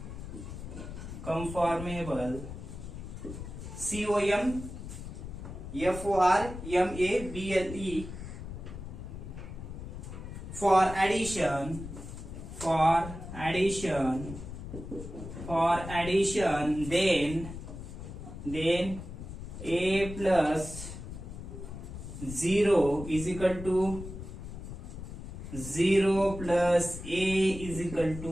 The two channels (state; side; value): noise; left; rumble, 10 dB below the sound